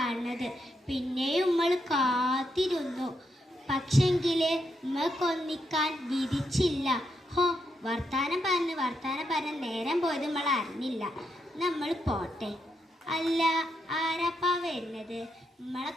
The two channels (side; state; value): both; normal; correlation 0.81